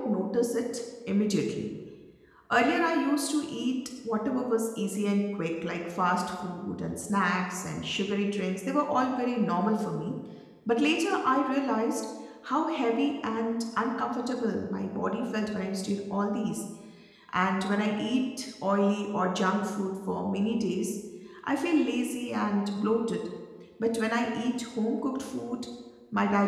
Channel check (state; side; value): identical; both; correlation 1.00